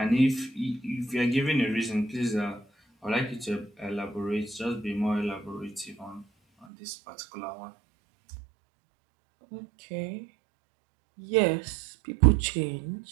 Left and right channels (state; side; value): drops out; left; at 6.7 s